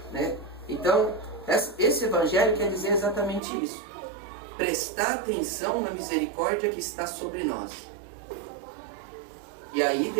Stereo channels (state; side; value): drops out; left; at 3.4 s